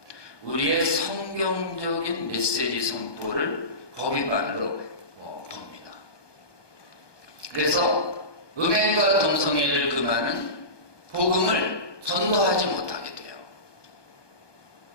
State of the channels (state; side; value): late; right; 1.2 ms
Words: 우리의 성경적인 메시지 선포를 법 위반으로 봅니다. 그래서 음행과 동성애를 금하는 복음을 전도하지 못하게 돼요.